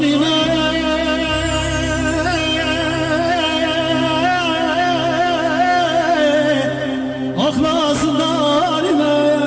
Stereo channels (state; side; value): identical; both; correlation 1.00